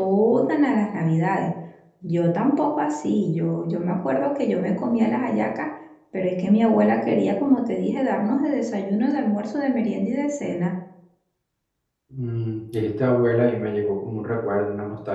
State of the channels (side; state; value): both; identical; correlation 1.00